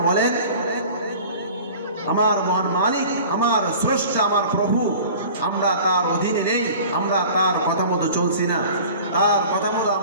বলেন? আমার মহান মালিক, আমার স্রষ্টা, আমার প্রভু, আমরা তার অধীনে নেই, আমরা তার কথা মতো চলছি না, তার কথা মতো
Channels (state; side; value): inverted; both; correlation -0.43